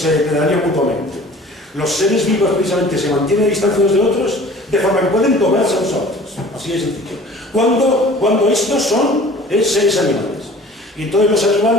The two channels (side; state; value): both; normal; correlation 0.46